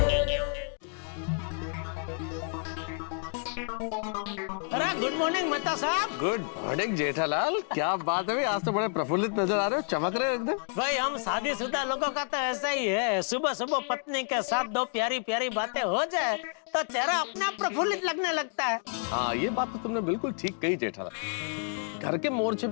अरे गुड मॉर्निंग मेहता साहब। गुड मॉर्निंग जेठालाल, क्या बात है भाई, आज तो बड़े प्रफुल्लित नजर आ रहे हो, चमक रहे हो एकदम। भाई हम शादीशुदा लोगों का तो ऐसा ही है, सुबह सुबह पत्नी के साथ दो प्यारी प्यारी बातें हो जाए तो चेहरा अपने आप प्रफुल्लित लगने लगता है। हाँ, ये बात तो तुमने बिल्कुल ठीक कही जेठालाल। घर के मोर्चे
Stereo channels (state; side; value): silent; right; 57 dB below the other